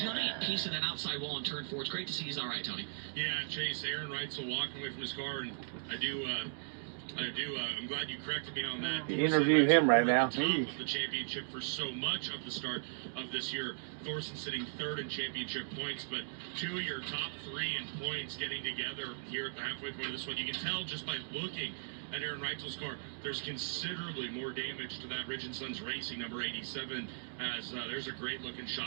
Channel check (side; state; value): left; silent; digital silence